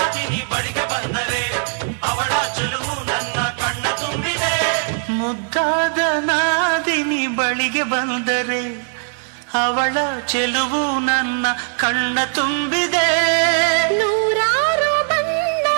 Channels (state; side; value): silent; left; 60 dB below the other